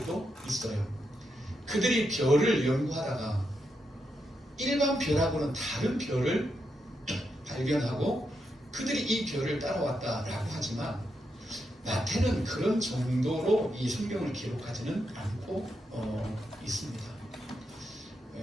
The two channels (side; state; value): both; normal; correlation 0.83